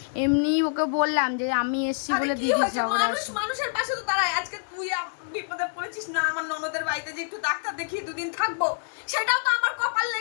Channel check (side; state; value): right; silent; 61 dB below the other